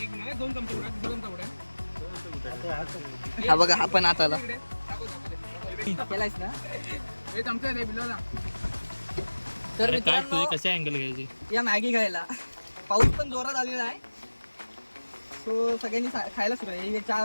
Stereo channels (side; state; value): both; inverted; correlation -1.00